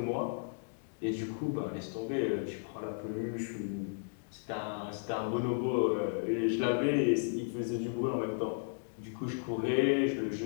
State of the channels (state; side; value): silent; right; digital silence